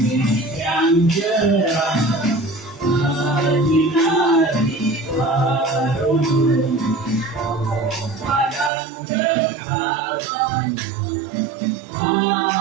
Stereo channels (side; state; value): left; drops out; at 8.7 s